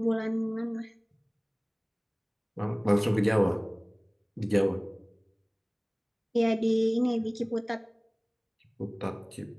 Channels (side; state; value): both; identical; correlation 1.00